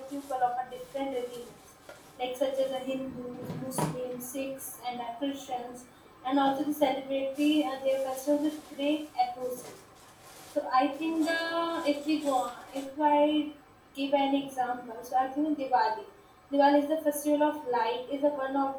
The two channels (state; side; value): identical; both; correlation 1.00